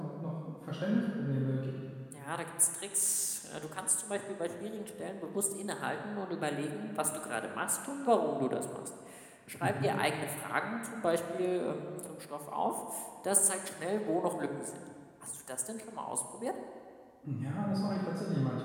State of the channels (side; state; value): both; identical; correlation 1.00